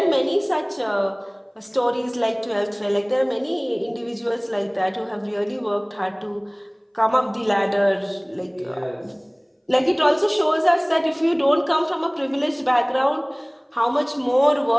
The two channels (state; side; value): identical; both; correlation 1.00